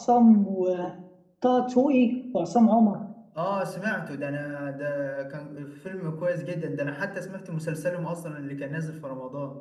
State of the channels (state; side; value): identical; both; correlation 1.00